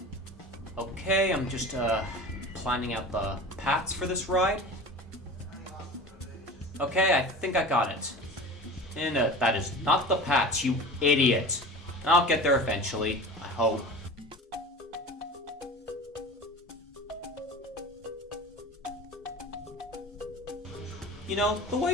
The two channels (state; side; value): normal; both; correlation 0.36